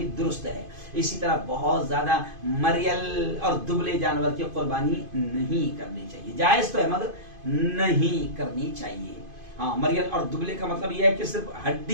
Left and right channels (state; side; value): late; left; 2.5 ms